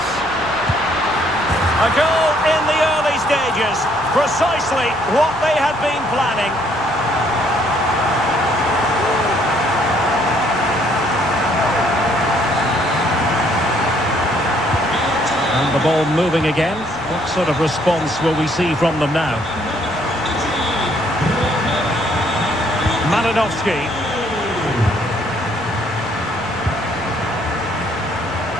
A goal in the early stages. Precisely what they had been planning. And the ball moving again. What sort of response will we see from them now? Malinowski.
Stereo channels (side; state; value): left; noise; rumble, 24 dB below the sound